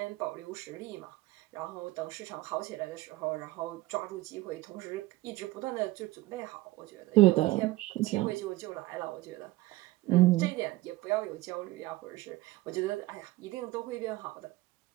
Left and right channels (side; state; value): left; quieter; 18.7 dB